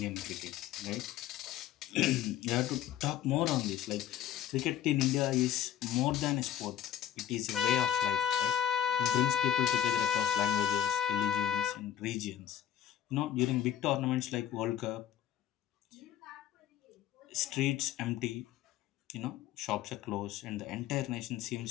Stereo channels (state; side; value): quieter; right; 10.7 dB